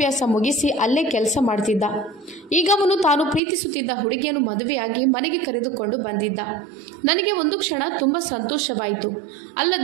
ಮುಗಿಸಿ ಅಲ್ಲೇ ಕೆಲಸ ಮಾಡ್ತಿದ್ದ. ಈಗ ಅವನು ತಾನು ಪ್ರೀತಿಸುತ್ತಿದ್ದ ಹುಡುಗಿಯನ್ನು ಮದುವೆಯಾಗಿ ಮನೆಗೆ ಕರೆದುಕೊಂಡು ಬಂದಿದ್ದ. ನನಗೆ ಒಂದು ಕ್ಷಣ ತುಂಬ ಸಂತೋಷವಾಯಿತು,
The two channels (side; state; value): left; drops out; at 3.4 s